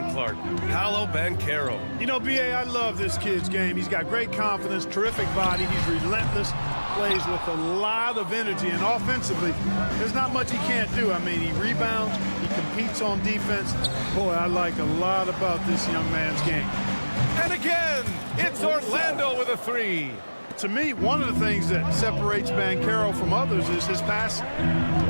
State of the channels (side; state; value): both; inverted; correlation -1.00